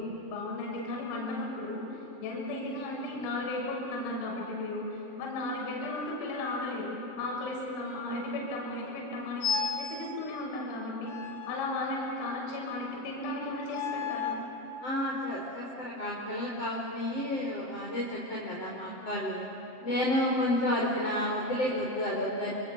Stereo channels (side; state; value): right; late; 7.7 ms